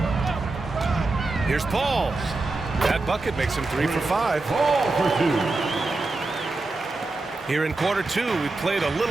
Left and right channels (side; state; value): left; quieter; 3.3 dB